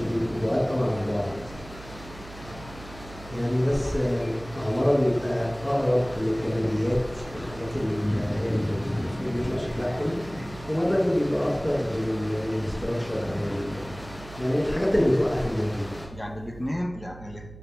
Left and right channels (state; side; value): noise; right; hum, 17 dB below the sound